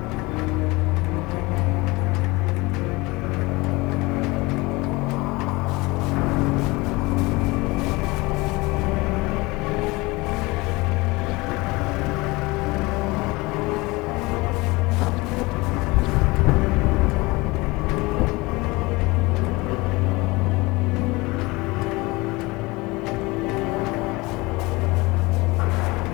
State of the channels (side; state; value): right; quieter; 23.3 dB